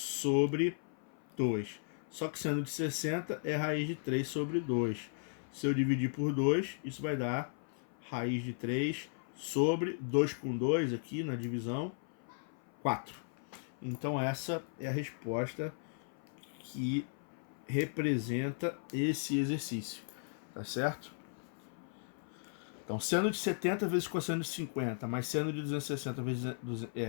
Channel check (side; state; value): right; silent; 54 dB below the other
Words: 2. Só que seno de 60 é raiz de 3 sobre 2. Se eu dividir por 2, isso vai dar raiz de 3 sobre 2 com 2 aqui na divisão, 4. Então essa é a resposta que representa esse exercício, tá certo? Então, seno de 70 vezes cosseno de 50, mais seno de 260 vezes